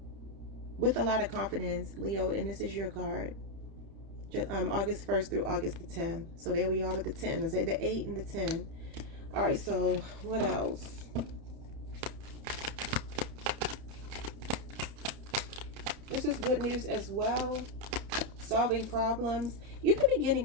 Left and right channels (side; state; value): left; late; 30 ms